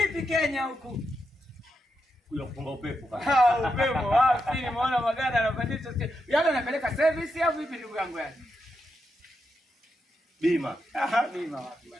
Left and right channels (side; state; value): both; normal; correlation 0.85